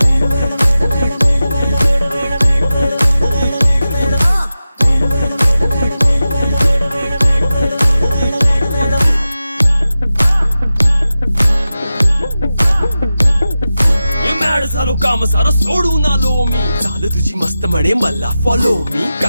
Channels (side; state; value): both; inverted; correlation -0.93